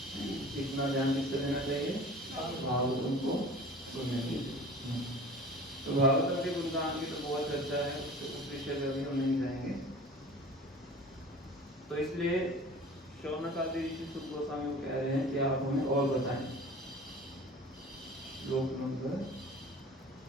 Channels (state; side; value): normal; both; correlation 0.42